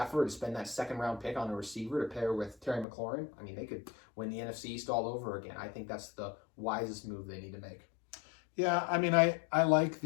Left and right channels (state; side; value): drops out; right; at 2.9 s